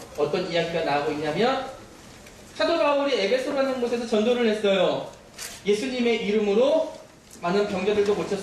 어떤 이야기가 나오고 있냐면, 사도 바울이 에베소라는 곳에서 전도를 했어요. 예수님의 이름으로 많은 병자들도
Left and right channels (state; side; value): identical; both; correlation 1.00